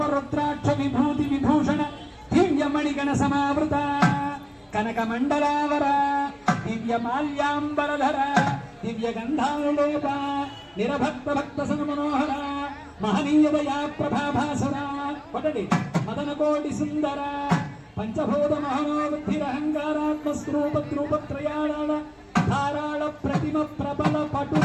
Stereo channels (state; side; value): identical; both; correlation 1.00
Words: రుద్రాక్ష విభూతి విభూషణ దివ్యమణిగణ సమావృత కనక మండలావర దివ్య మాల్యాంబరధర దివ్య గంధానులేప నిరభక్త భక్త సన్మనోహర మహనీయ దయా ప్రభాభాసుర ఒకటి మదన కోటి సుందర పంచభూత మహోబుద్ధిరహంకారాత్మ స్వరూపద్రూపత్రయాళ ధారాళ ప్రతిమ ప్రబల పటు